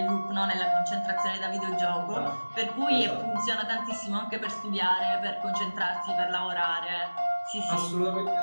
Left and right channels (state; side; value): inverted; both; correlation -1.00